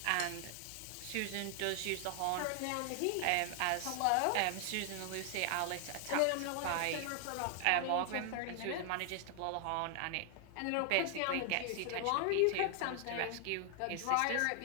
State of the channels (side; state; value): both; different; correlation 0.00